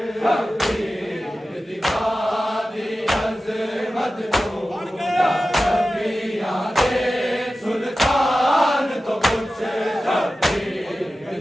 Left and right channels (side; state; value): both; normal; correlation 0.94